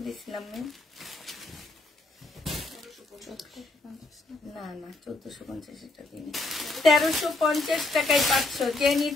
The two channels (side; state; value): right; quieter; 3.0 dB